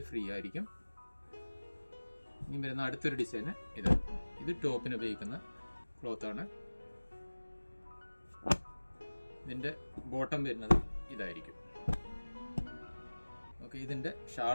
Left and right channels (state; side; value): inverted; both; correlation -1.00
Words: ഫ്രീ ആയിരിക്കും. ഇനി വരുന്ന അടുത്തൊരു ഡിസൈന് ഇത് ടോപ്പിന് ഉപയോഗിക്കുന്ന ക്ലോത്താണ്. ഇതിൻ്റെ ബോട്ടം വരുന്നത് ഇതായിരിക്കും. ഓക്കെ, ഇതിൻ്റെ